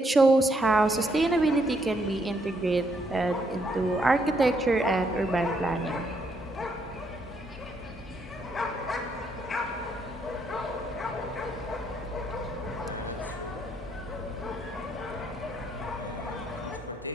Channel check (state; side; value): normal; both; correlation 0.73